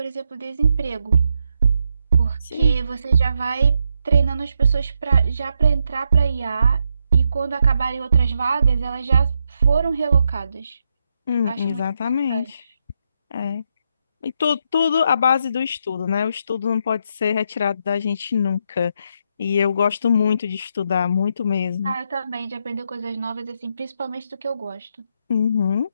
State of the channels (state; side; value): inverted; both; correlation -0.80